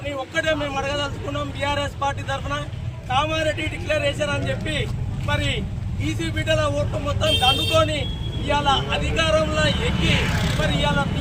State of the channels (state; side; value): identical; both; correlation 1.00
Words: ఒక్కటే మేము అడగదలుచుకున్నాం. బీఆర్ఎస్ పార్టీ తరఫున కామారెడ్డి డిక్లరేషన్ అని చెప్పి మరి బీసీ బిడ్డల ఓట్లు మొత్తం దండుకొని ఇవాళ అధికారంలో ఎక్కి మరి ఇవాళ